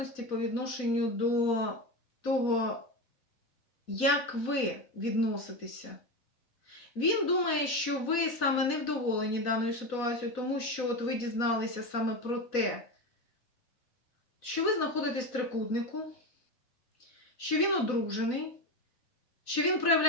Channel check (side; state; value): right; late; 4.1 ms